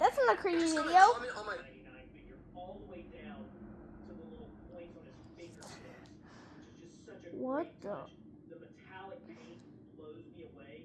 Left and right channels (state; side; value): identical; both; correlation 1.00